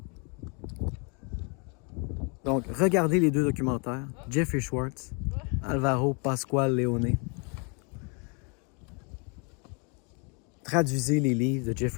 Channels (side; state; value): right; quieter; 34.8 dB